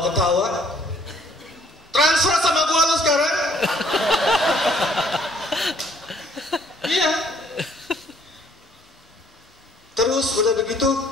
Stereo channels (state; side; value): normal; both; correlation 0.63